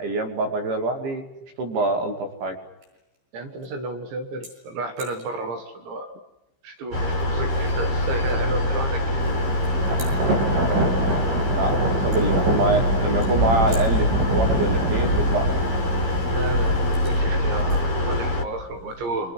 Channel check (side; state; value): left; late; 15 ms